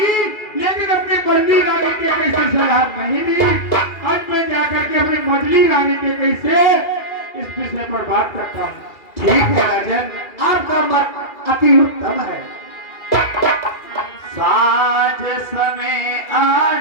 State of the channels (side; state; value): right; late; 2.4 ms